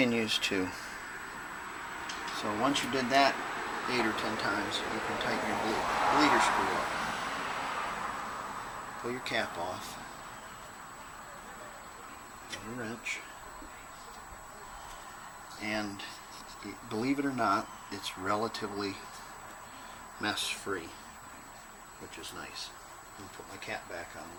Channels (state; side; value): identical; both; correlation 1.00